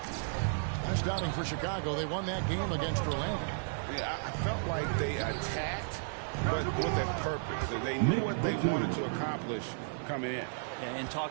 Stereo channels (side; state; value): left; silent; digital silence